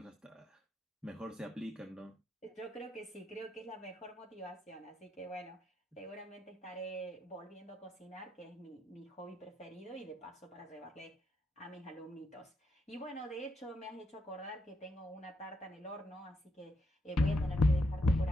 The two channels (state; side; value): normal; both; correlation 0.80